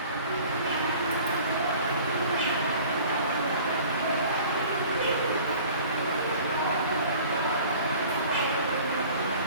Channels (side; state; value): both; inverted; correlation -0.47